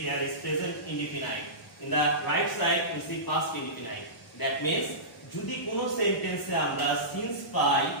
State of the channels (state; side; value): normal; both; correlation -0.20